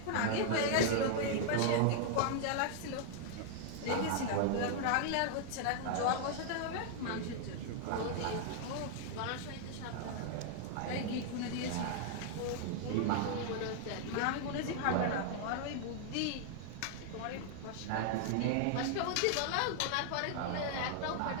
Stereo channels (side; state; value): both; different; correlation 0.00